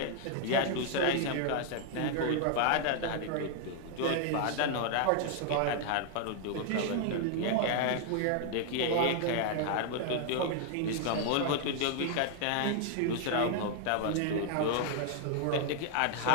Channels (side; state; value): both; different; correlation 0.00